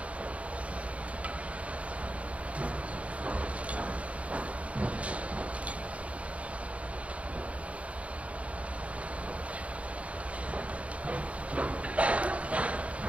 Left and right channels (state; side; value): late; left; 0.064 ms